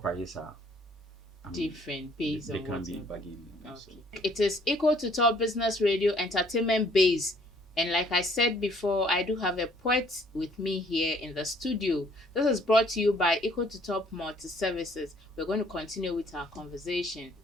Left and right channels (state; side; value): normal; both; correlation 0.61